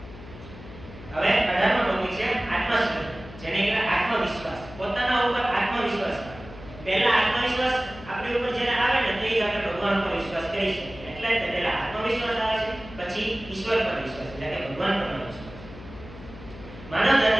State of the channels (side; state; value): left; noise; hum, 16 dB below the sound